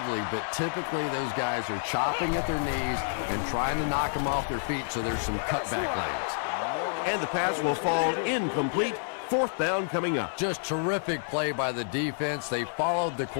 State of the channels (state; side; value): silent; right; 59 dB below the other